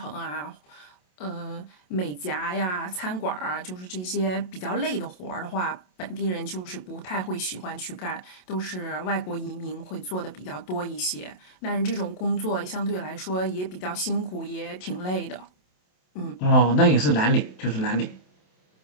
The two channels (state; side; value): late; right; 27 ms